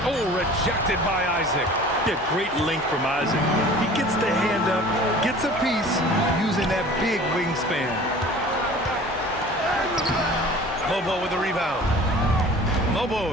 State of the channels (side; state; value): both; normal; correlation 0.44